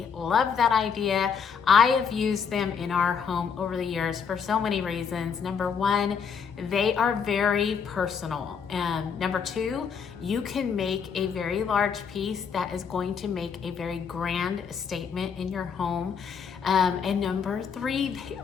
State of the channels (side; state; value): right; quieter; 6.6 dB